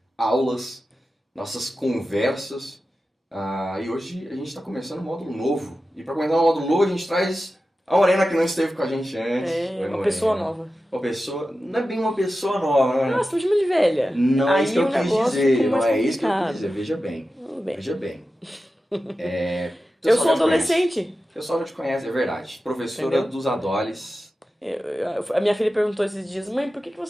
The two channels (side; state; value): both; normal; correlation 0.93